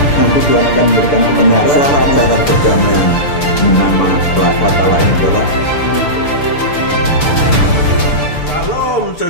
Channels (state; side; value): late; right; 6.8 ms